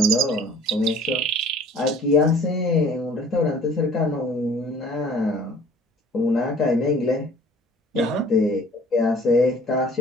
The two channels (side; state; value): both; normal; correlation 0.51